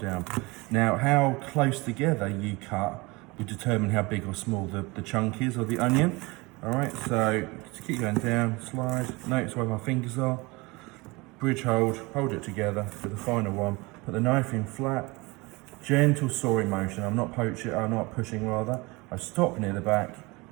Now, how close together you cut will determine how big or small the chunk is of the onion. All right, so to keep going down, slide, notice where my fingers are, bridge hold it together for the final one, put the knife in flat, gentle sawing motion, I'm not pushing rather, I stop near the back,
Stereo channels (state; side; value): quieter; left; 24.7 dB